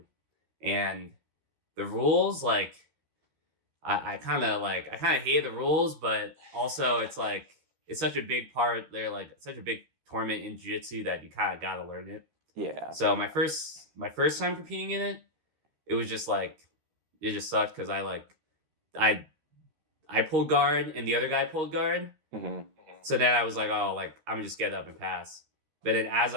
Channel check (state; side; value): late; left; 13 ms